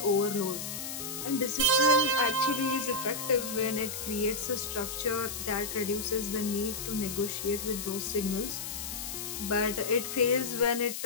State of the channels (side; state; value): left; noise; hiss, 6 dB below the sound